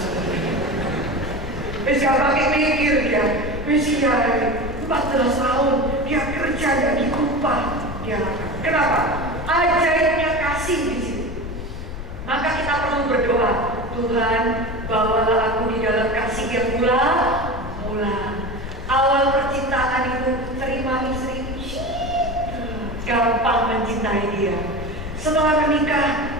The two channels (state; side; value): noise; left; rumble, 8 dB below the sound